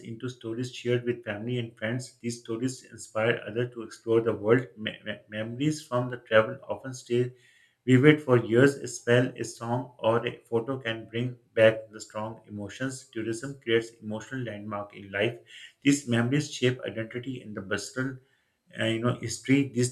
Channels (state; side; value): identical; both; correlation 1.00